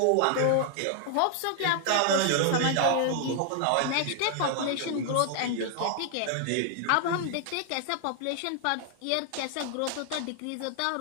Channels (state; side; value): different; both; correlation 0.00